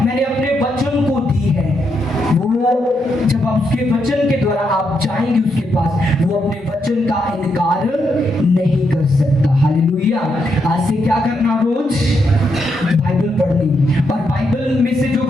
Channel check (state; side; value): normal; both; correlation 0.80